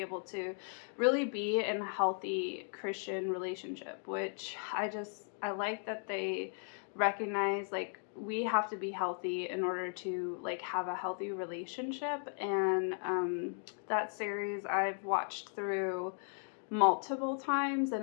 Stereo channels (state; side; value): silent; right; 53 dB below the other